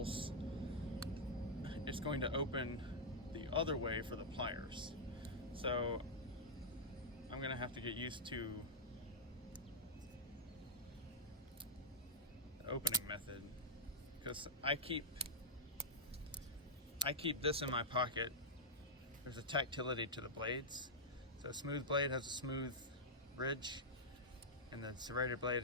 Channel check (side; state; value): both; normal; correlation -0.06